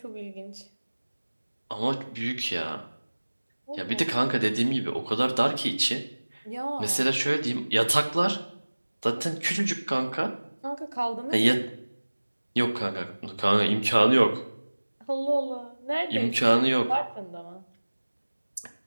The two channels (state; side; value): inverted; both; correlation -1.00